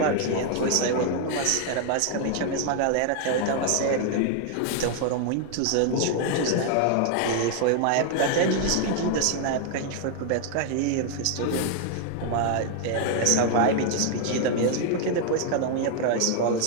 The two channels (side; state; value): both; different; correlation 0.00